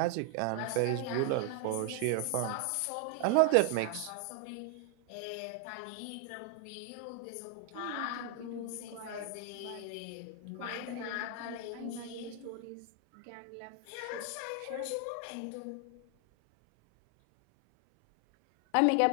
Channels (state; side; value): different; both; correlation 0.00